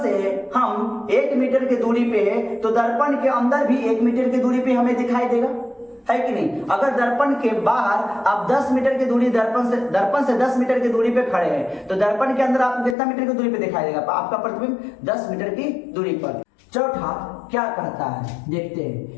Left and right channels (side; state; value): right; drops out; at 13.0 s